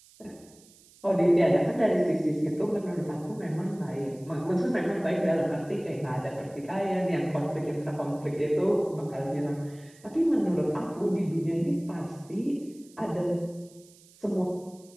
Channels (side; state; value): right; noise; hiss, 26 dB below the sound